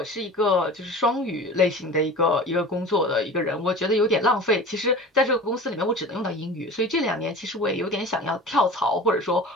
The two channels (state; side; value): normal; both; correlation 0.37